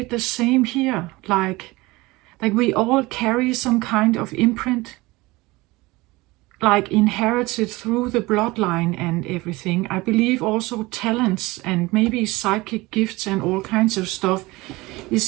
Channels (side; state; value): left; quieter; 21.4 dB